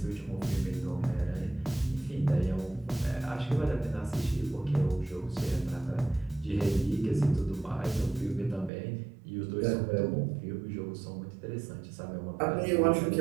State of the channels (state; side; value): drops out; left; at 8.7 s